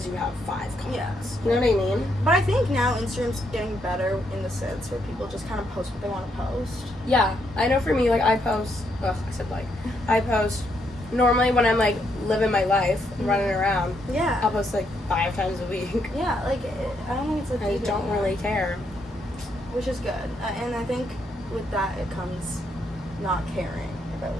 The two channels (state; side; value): normal; both; correlation 0.76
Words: you have 5 comments. You know what I mean? But I think now Instagram's getting better in the sense where people just kind of post what they want to post. Yeah, I know for me, like, I post, I post, normally when I'm, like, living my life, running around, I'll post, like, 5 times a week. Yeah, like, I don't think it's like... I don't really care. Which is good. And I think with that it comes not caring about